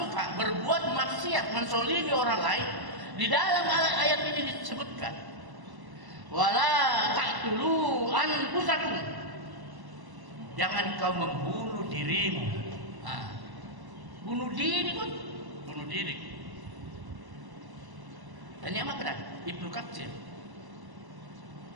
berbuat maksiat, mensolimi orang lain, di dalam ayat ini disebutkan, wala taqtulu anfusakum, jangan kau membunuh dirimu. Bunuh diri pun, bunuh diri. Tanya apa Ibnu Katsir?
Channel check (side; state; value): left; late; 1.1 ms